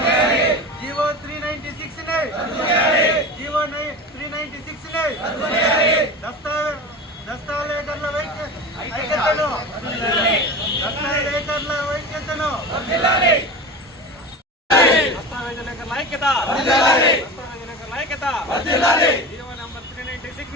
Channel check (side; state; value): both; normal; correlation 0.30